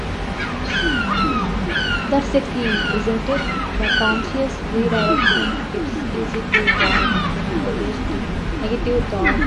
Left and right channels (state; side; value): identical; both; correlation 1.00